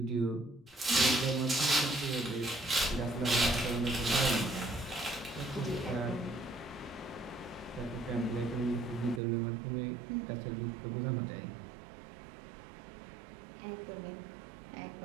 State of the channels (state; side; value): drops out; left; at 9.2 s